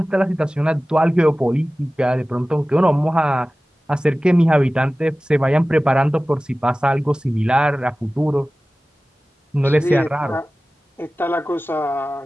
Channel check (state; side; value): normal; both; correlation 0.97